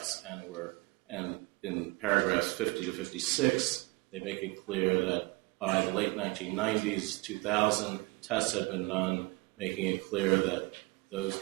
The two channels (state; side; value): quieter; left; 24.1 dB